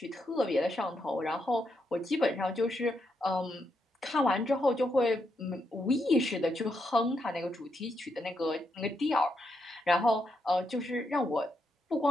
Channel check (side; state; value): both; normal; correlation 0.81